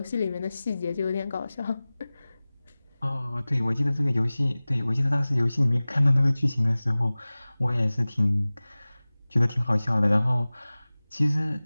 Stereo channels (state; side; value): inverted; both; correlation -0.98